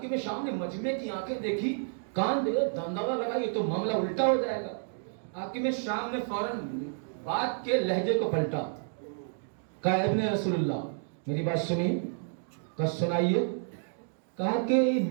شام نے مجمع کی آنکھیں دیکھی، کان دے دنداوا لگا، یہ تو معاملہ الٹا ہو جائے گا۔ حاکم شام نے فوراً بات کے لہجے کو پلٹا، کہا ابن رسول اللہ میری بات سنیے، کہا سنائیے۔ کہا کہ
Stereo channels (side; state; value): left; silent; digital silence